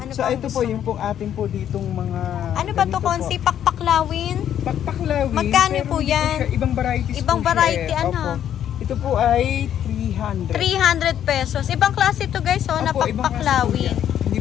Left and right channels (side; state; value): right; quieter; 10.2 dB